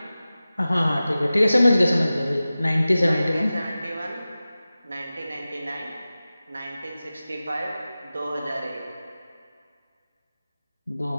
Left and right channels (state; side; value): inverted; both; correlation -0.96